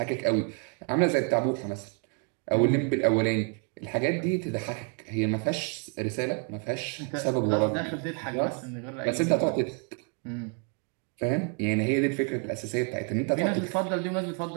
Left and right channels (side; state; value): left; quieter; 35.5 dB